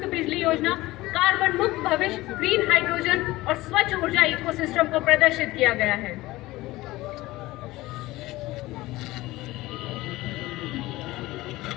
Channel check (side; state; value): right; quieter; 18.7 dB